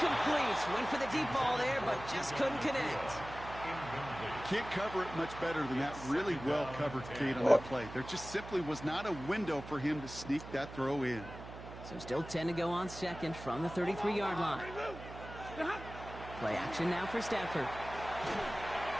Went for the deep ball there, but just couldn't connect. Can't cover it much better than that. Really well covered, Kate, on that play. There just simply was not a window for him to sneak that throw in. So still 10 to go on second from the 33-yard line. Play action now for Stafford.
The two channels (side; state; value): right; noise; hum, 13 dB below the sound